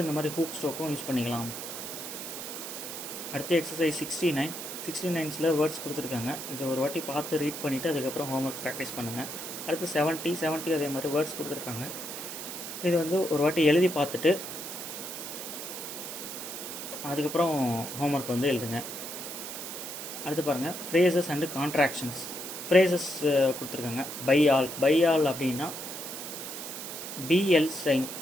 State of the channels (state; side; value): noise; right; hiss, 8 dB below the sound